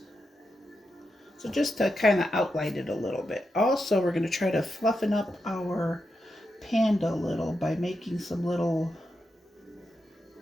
So just to kind of outline it a little bit. Also, we're going to try to fluffen up our panda a little by making some little,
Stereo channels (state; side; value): normal; both; correlation 0.87